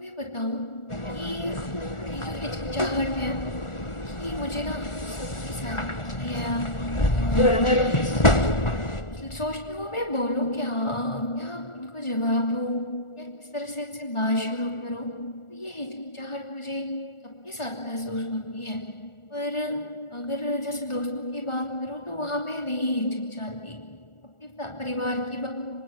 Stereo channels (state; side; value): late; right; 1.4 ms